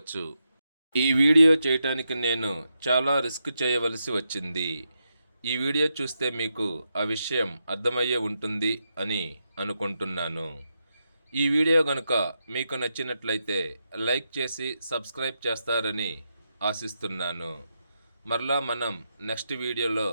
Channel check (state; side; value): inverted; both; correlation -0.84